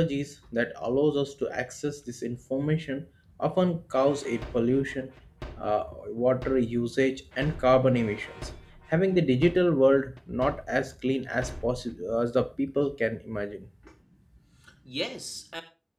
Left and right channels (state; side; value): identical; both; correlation 1.00